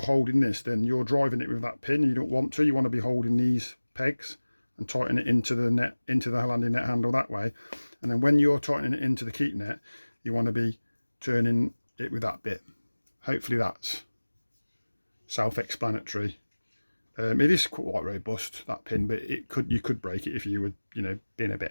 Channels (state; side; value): inverted; both; correlation -1.00